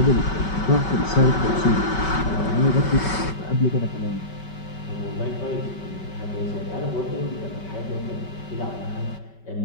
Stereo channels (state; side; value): late; right; 5.2 ms